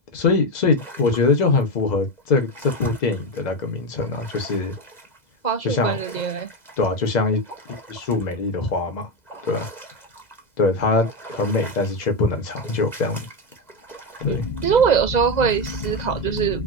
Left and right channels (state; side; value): late; right; 2.0 ms